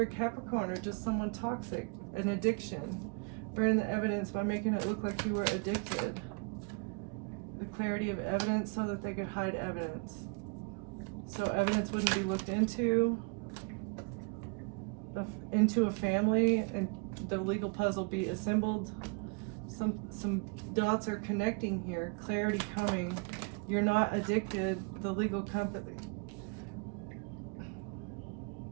a Capricorn or just someone toxic, an addiction. Burn the evidence by making it look like you were addicted. The clarity of evidence so that they could hide evidence. So evidence wouldn't be looked into a family, and the legal puzzle be assembled. Some dots are connecting here. Clarity coming. You're not addicted. The legal company.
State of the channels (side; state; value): left; quieter; 34.0 dB